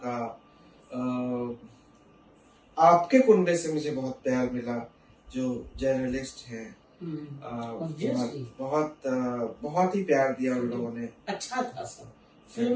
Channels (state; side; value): identical; both; correlation 1.00